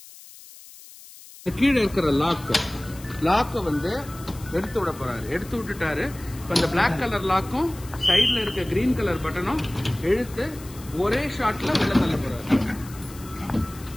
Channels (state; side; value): noise; left; hiss, 19 dB below the sound